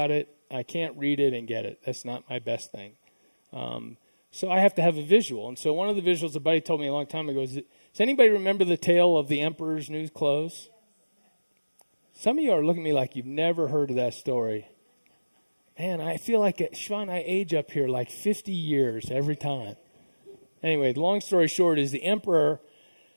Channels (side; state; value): both; inverted; correlation -1.00